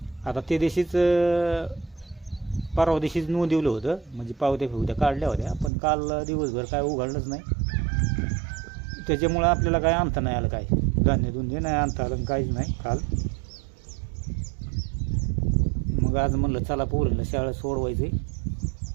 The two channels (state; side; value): drops out; left; at 5.7 s